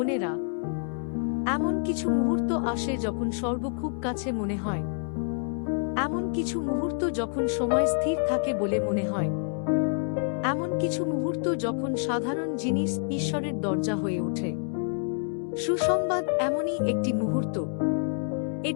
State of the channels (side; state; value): right; silent; 60 dB below the other